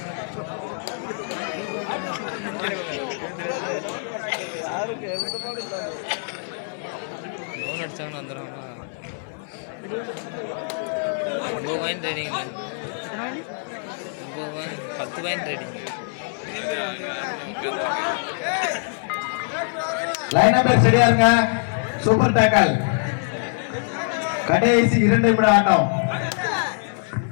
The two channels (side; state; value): right; silent; 63 dB below the other